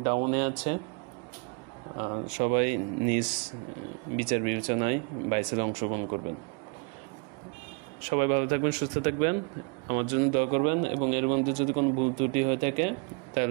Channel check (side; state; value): left; quieter; 34.2 dB